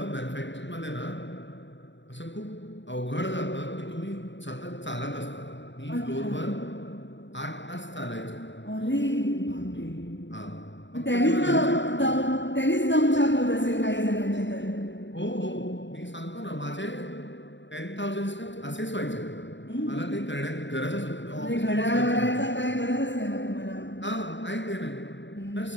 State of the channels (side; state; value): right; late; 0.53 ms